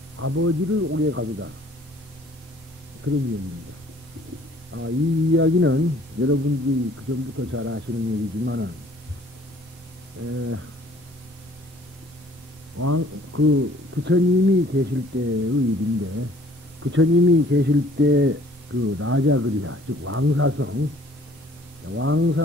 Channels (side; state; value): both; normal; correlation 0.56